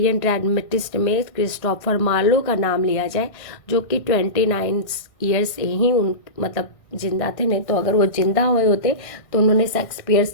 ड्रामेटिस्ट में क्रिस्टोफर मार्लो का नाम लिया जाए, जो कि 29 ईयर्स ही मतलब जिंदा थे। नहीं तो अगर वो जिंदा हुए होते तो उन्होंने शेक्सपियर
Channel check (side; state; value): right; late; 1.6 ms